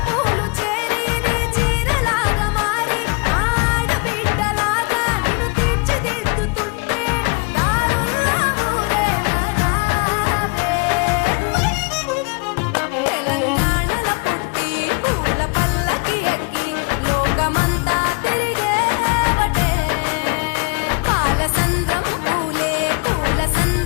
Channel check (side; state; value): right; quieter; 29.8 dB